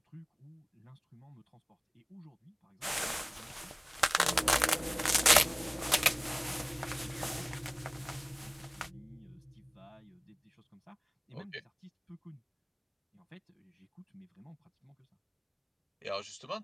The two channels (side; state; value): both; identical; correlation 1.00